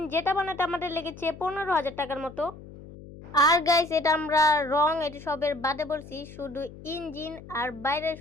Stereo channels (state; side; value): noise; left; hum, 17 dB below the sound